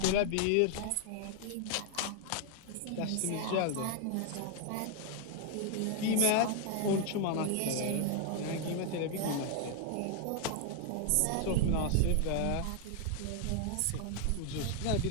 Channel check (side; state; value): both; different; correlation 0.00